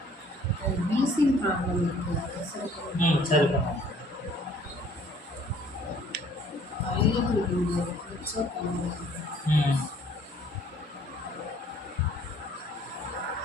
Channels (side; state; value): both; normal; correlation 0.57